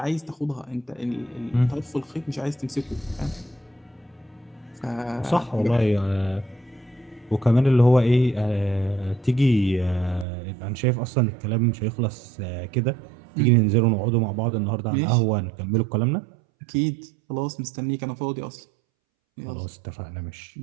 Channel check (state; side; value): drops out; left; at 10.2 s